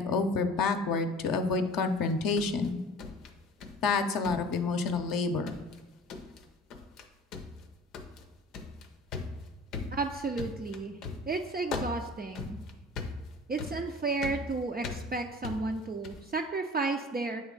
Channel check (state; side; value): normal; both; correlation 0.44